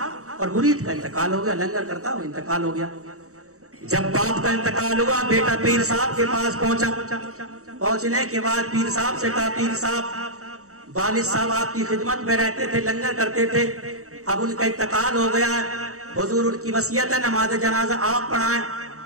اور مرید کا انتقال ہو گیا. لنگر کرتا وہ انتقال ہو گیا. جب باپ کا انتقال ہوا بیٹا پیر صاحب کے پاس پہنچا. پہنچنے کے بعد پیر صاحب سے کہا پیر صاحب والد صاحب آپ کی خدمت میں رہتے تھے، لنگر کرتے تھے، اب ان کا انتقال ہو گیا ہے، حضور ان کی وصیت ہے نماز جنازہ آپ پڑھائیں.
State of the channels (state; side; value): late; left; 0.65 ms